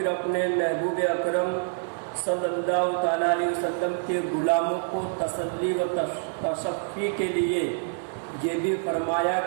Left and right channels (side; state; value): left; silent; 60 dB below the other